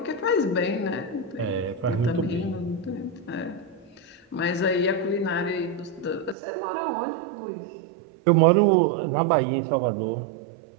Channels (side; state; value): left; drops out; at 6.4 s